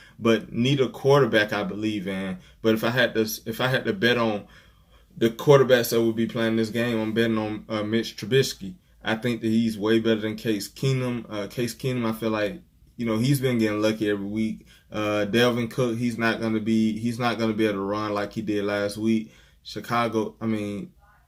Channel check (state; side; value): identical; both; correlation 1.00